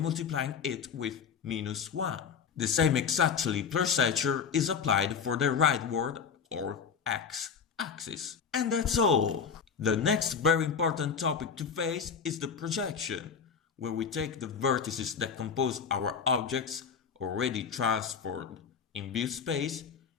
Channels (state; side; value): quieter; right; 6.4 dB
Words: it with -1. The same exactly procedure is applied for the rightward or X axis. And that's all. The next very important topic to face is the projection, where we take the vertices that compose our objects already transformed in view space